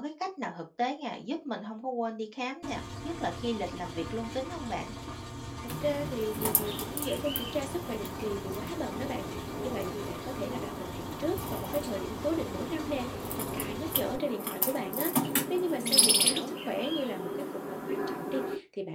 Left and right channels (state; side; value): identical; both; correlation 1.00